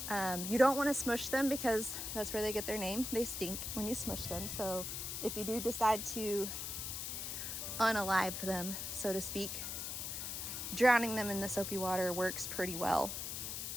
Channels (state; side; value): noise; left; hiss, 4 dB below the sound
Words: You don't want to smush them because that's where they get their name. They stink when you smush them. So if you do decide to unalive them, so to speak, drowning them in the soapy water works pretty well.